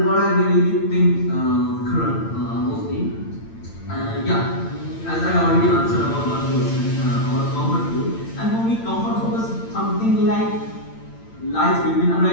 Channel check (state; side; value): late; right; 8.9 ms